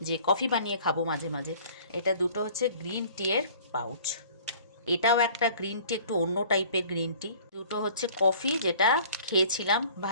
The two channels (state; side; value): inverted; both; correlation -0.50